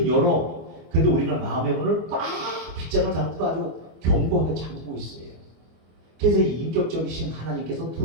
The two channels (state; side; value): late; left; 25 ms